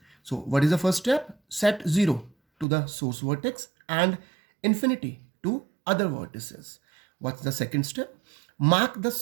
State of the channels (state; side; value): drops out; left; at 2.7 s